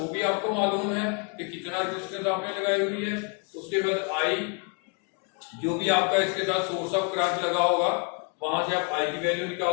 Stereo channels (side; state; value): right; quieter; 34.9 dB